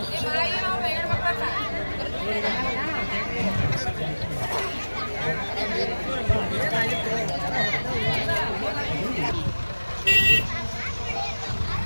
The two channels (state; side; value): inverted; both; correlation -1.00